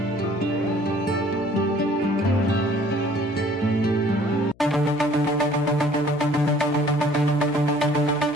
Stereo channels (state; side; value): noise; left; hum, 28 dB below the sound